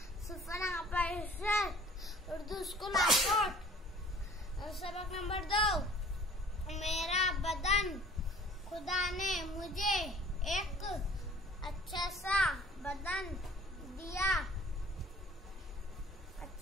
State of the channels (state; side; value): normal; both; correlation 0.51